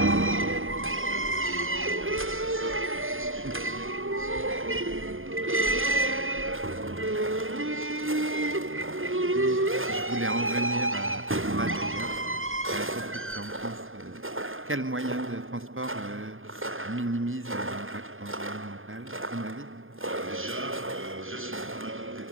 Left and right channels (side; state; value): left; late; 0.59 ms